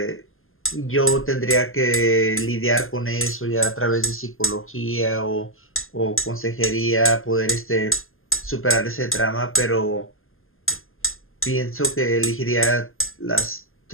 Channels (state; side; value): late; right; 0.60 ms